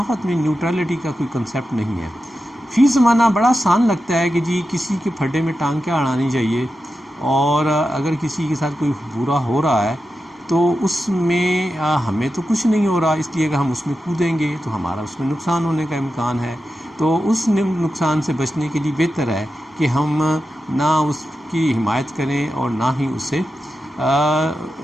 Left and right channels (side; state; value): both; normal; correlation 0.91